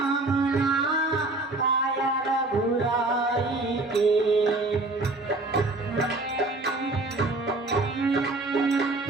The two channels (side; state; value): left; quieter; 3.0 dB